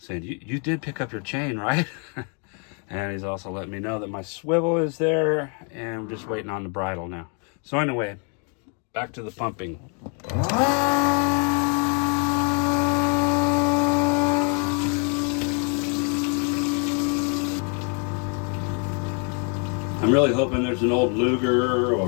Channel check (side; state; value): right; quieter; 39.1 dB